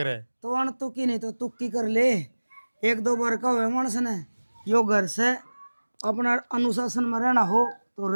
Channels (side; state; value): both; inverted; correlation -1.00